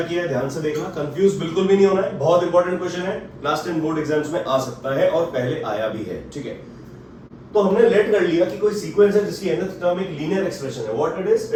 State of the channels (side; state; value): both; identical; correlation 1.00